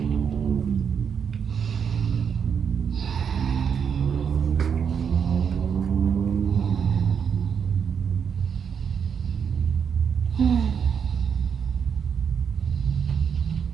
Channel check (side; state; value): left; quieter; 7.1 dB